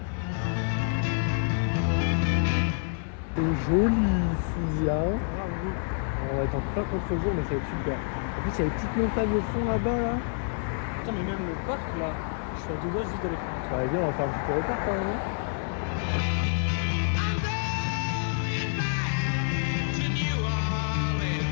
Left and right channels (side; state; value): right; silent; digital silence